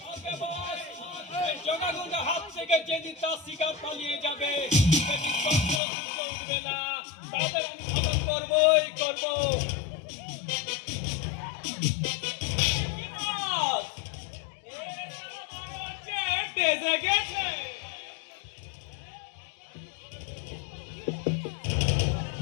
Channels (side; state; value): right; drops out; at 5.8 s